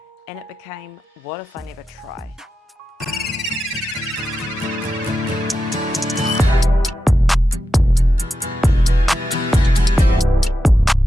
And it became, what if I never try?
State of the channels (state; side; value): normal; both; correlation 0.89